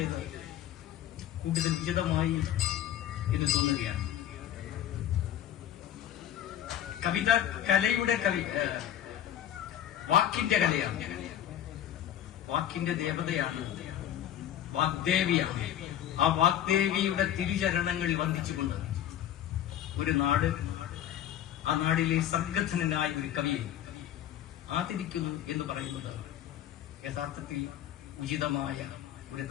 കൂടുതൽ വിശദമായി എന്ന് തോന്നുകയാണ്. കവിത കലയുടെ വാക്കിന്റെ കലയാണ്, വാക്കിന്റെ ദേവതയാണ്, വാഗ്ദേവിയാണ്. ആ വാഗ്ദേവിയുടെ തിരുചരണങ്ങളിൽ വന്ദിച്ചുകൊണ്ട് ഒരു നാട്, ആ നാടിലെ സംഗഠനായ ഒരു കവിയെ ആദരിക്കുന്നു എന്ന് പറയുന്നത് യഥാർത്ഥത്തിൽ ഉചിതമായ ഒരു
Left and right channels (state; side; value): quieter; right; 11.3 dB